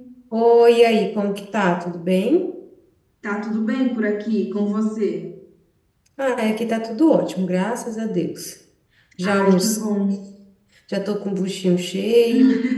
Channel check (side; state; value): both; identical; correlation 1.00